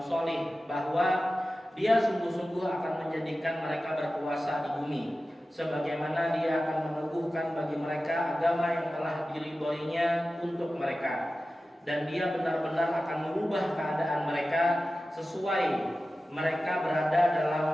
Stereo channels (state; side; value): normal; both; correlation 0.95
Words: soleh bahwa Dia sungguh-sungguh akan menjadikan mereka berkuasa di bumi, sebagaimana Dia akan meneguhkan bagi mereka agama yang telah diridhoinya untuk mereka, dan Dia benar-benar akan merubah keadaan mereka sesudah mereka